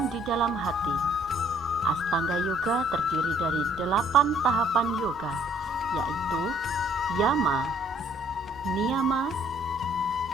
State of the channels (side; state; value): both; normal; correlation 0.62